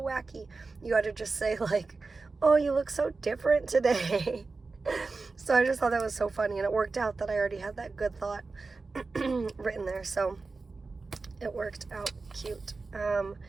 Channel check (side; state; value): left; quieter; 4.0 dB